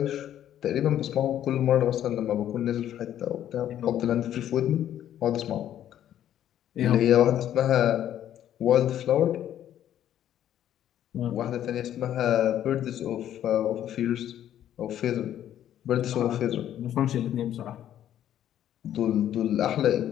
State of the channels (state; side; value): quieter; right; 11.1 dB